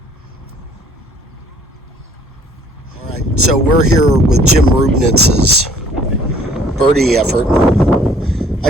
All right, so we're here with Jim Rubnitz's birdie effort.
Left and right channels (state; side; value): normal; both; correlation 0.58